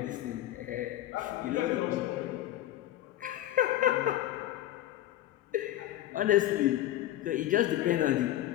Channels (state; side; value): quieter; right; 13.8 dB